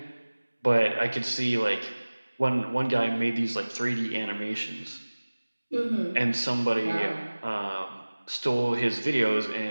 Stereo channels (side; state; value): both; inverted; correlation -1.00